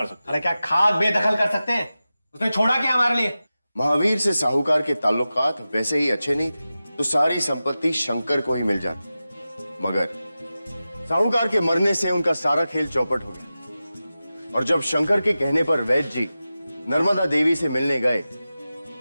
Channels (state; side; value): inverted; both; correlation -0.94